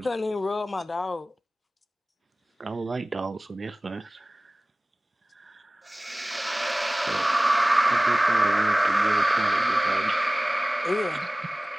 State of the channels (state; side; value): normal; both; correlation 0.98